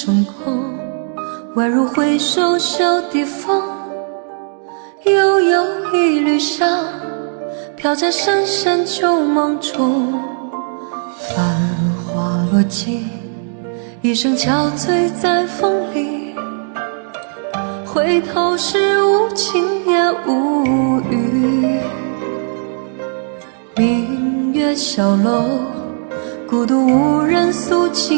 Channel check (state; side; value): silent; left; digital silence